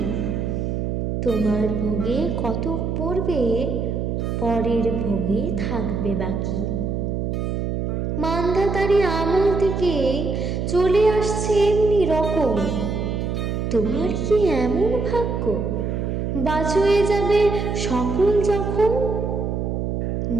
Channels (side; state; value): right; noise; hum, 1 dB below the sound